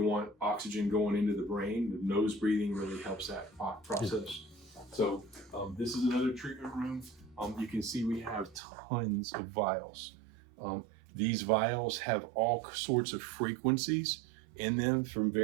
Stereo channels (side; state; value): left; drops out; at 8.6 s